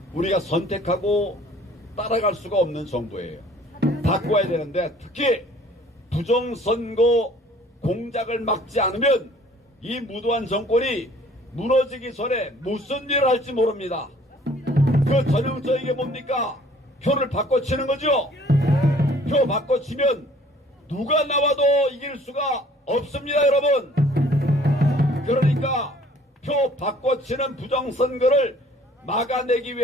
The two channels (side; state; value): both; normal; correlation 0.55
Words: 우리가 선택하고 따라갈 수가 없는 정부예요. 바꿔야 되는데 특히 부정선거 공작을 막지 않으면 이 무도한 정권이 무너지기 전에 무슨 일을 할지 모릅니다. 그 전형적인 게 뭡니까? 표를 바꿔치는 거죠. 표 바꿔치면 누가 나와도 이길 수가 없습니다, 여러분. 그러니까 표 바꿔치는 부정선거를 막아내기